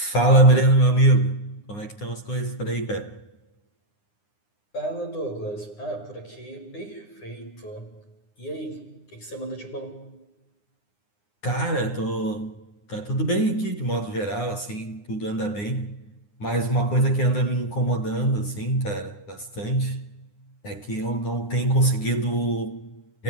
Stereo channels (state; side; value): late; right; 9.7 ms